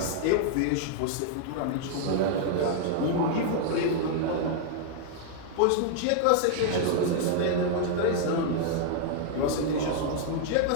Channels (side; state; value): both; different; correlation 0.00